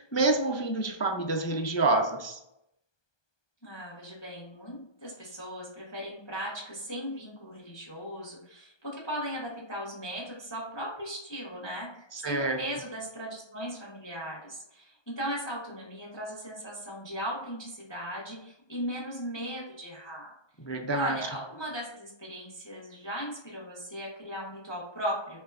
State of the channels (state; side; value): late; right; 1.2 ms